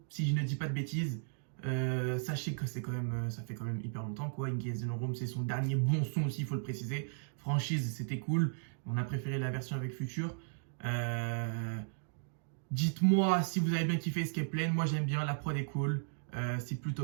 si je ne dis pas de bêtises. Sachez que c'est quand même, ça fait quand même hyper longtemps quoi. Engage in the Room, c'est son dernier bon son aussi, il faut le préciser. Franchise, c'était cool. On a préféré la version avec Future. Dites-moi si vous avez bien kiffé Escape Plan. Moi j'aime bien, la prod est cool. C'est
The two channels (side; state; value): left; silent; digital silence